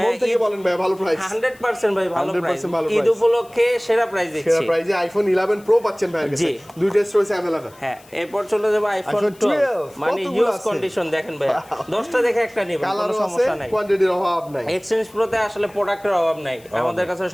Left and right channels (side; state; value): left; noise; hiss, 26 dB below the sound